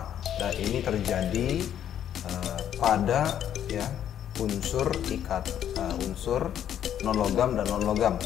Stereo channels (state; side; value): quieter; right; 10.1 dB